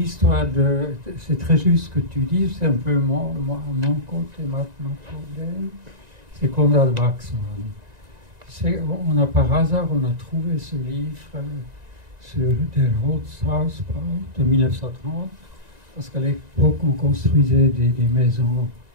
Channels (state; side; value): late; left; 1.9 ms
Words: c'est très juste ce que tu dis, c'est un peu mon côté, mon problème, c'est Konrad Waxman. Par hasard, on a trouvé ce livre sur Der Holzhausbau de 1930, parce qu'à l'époque, on construisait des maisons